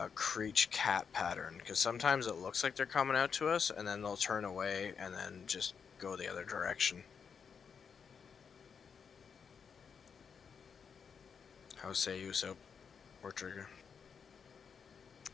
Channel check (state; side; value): quieter; right; 6.4 dB